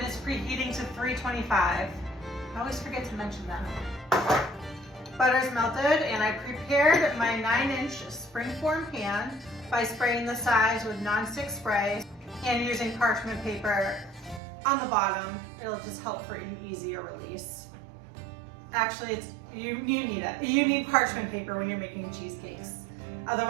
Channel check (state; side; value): drops out; left; at 14.4 s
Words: is preheating to 325. I always forget to mention that. Butter's melted, and I prepared my 9-inch springform pan by spraying the sides with nonstick spray and using parchment paper on the bottom. It'll just help for an easier release. Actually, you need it. You need parchment paper when you're making cheesecakes.